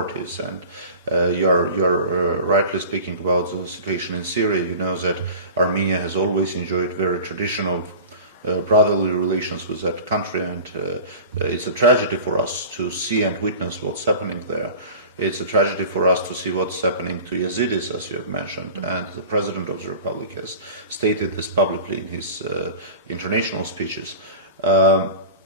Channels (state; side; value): inverted; both; correlation -0.37